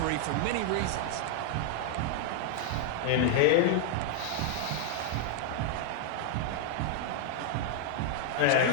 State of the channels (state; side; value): different; both; correlation 0.00